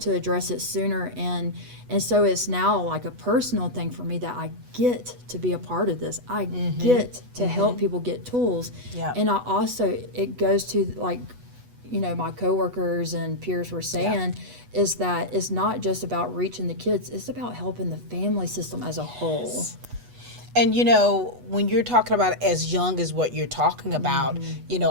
address it sooner. And so it's now like a personal thing for me that I get to be a part of this. I get to help people get tools. And I also, it goes to like, you know, my coworkers and peers were saying, is that it's not just about reaching the kids, it's about helping the family system as a whole. And you know, when you're talking about as young as what you're talking about, you know,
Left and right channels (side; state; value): left; late; 8.2 ms